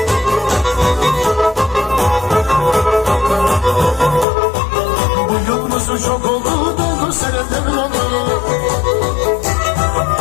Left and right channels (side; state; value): right; drops out; at 4.2 s